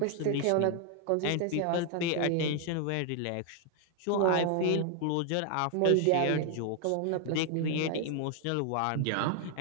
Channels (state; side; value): different; both; correlation 0.00